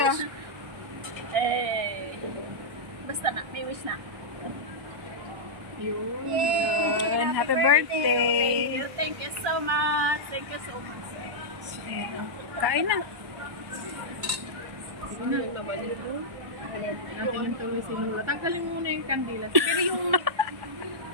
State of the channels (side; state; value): left; late; 1.1 ms